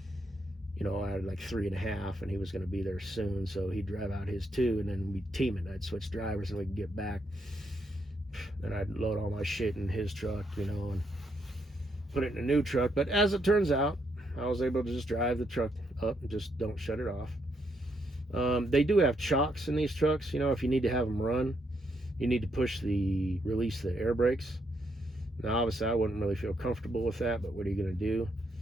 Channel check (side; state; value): both; normal; correlation 0.77